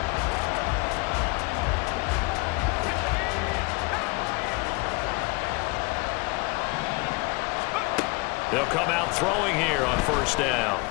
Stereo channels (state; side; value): quieter; right; 26.9 dB